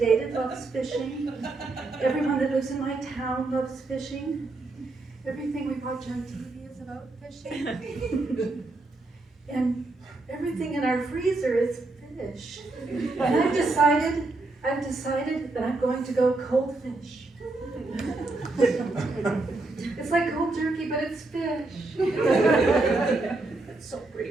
loves fishing. Everyone that lives in my town loves fishing. Everything we watch on TV is about fishing. And everything in our decided that I'm going to go cold fish. It's like cold turkey, but it's fish. That's so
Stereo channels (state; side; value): quieter; left; 3.2 dB